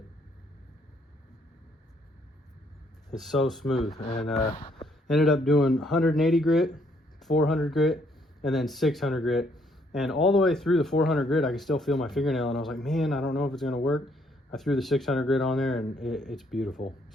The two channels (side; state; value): both; normal; correlation 0.69